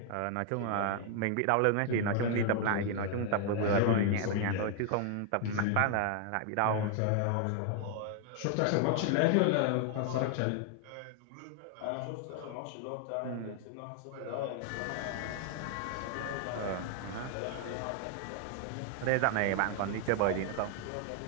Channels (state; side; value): different; both; correlation 0.00